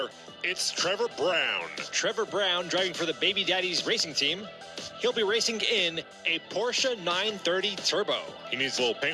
it's Trevor Brown. Trevor Brown driving for the Baby Daddies Racing Team. He'll be racing in a Porsche 930 Turbo. He needs a little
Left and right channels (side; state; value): both; identical; correlation 1.00